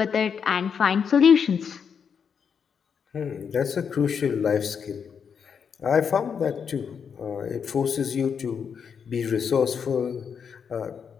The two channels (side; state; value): right; quieter; 6.8 dB